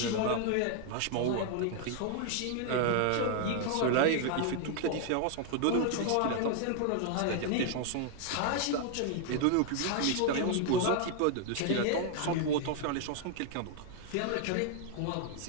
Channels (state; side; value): different; both; correlation 0.00